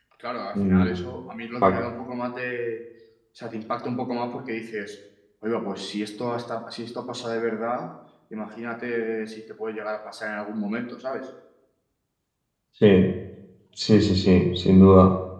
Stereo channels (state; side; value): identical; both; correlation 1.00